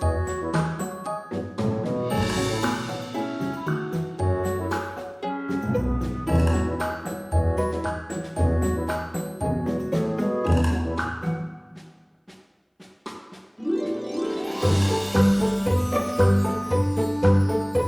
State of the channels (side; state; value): both; identical; correlation 1.00